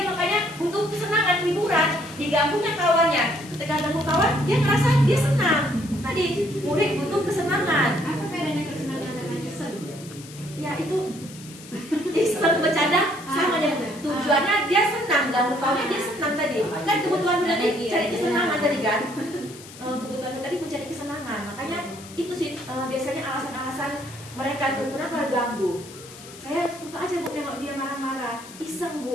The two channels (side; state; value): left; noise; hiss, 17 dB below the sound